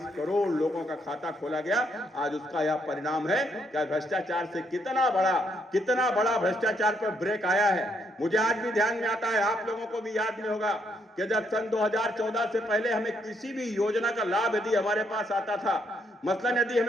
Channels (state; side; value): normal; both; correlation 0.73